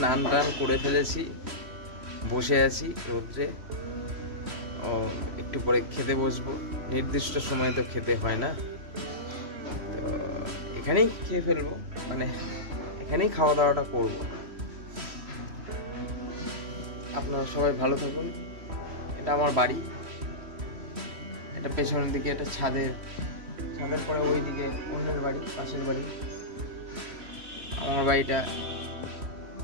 টান করে ফেলেছি, বসে আছি রোদ্রে। ও একটু পরে খেতে বসবো। নির্দিষ্ট সময় তো খেতে হয় না, তো এখানেই খেয়ে ফেলবো, মানে এখানেই খাওয়া দাওয়াটা করবো। আপনারা সবাই ভালো থাকুন। এটা আমার বাড়ি, এটা পেছনের দিকে, এটা ছাদের পরে ওই দিকে অন্যের বাড়ি, পাশের বাড়ি। আমার বাড়িটা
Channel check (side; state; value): left; late; 3.1 ms